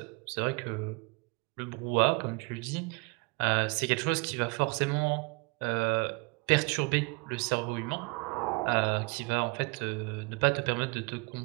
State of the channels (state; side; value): quieter; left; 30.3 dB